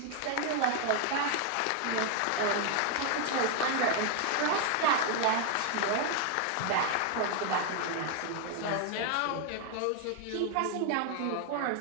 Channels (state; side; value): different; both; correlation 0.01